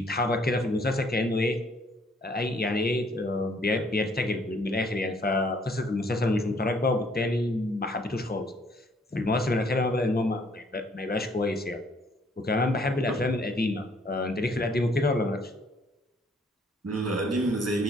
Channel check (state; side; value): normal; both; correlation 0.64